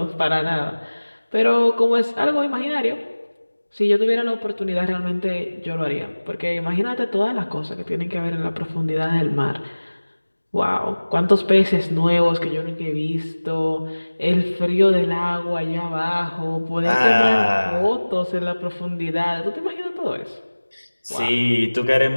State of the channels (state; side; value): inverted; both; correlation -1.00